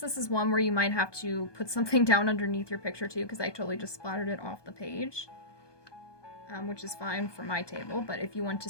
this is one where you might have to put something down underneath your picture too, because I totally just splattered it off the page. which is fine for my table, but if you want to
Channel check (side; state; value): right; late; 1.2 ms